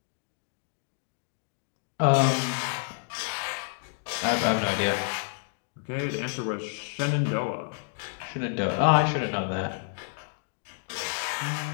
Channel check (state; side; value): silent; right; digital silence